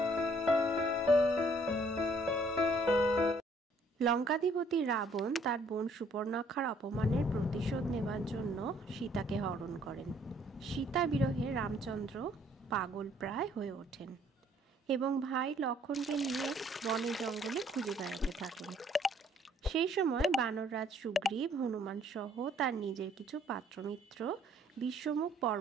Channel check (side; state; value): both; normal; correlation 0.62